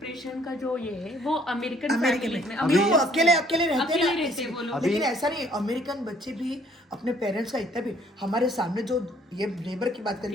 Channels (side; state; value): both; normal; correlation 0.62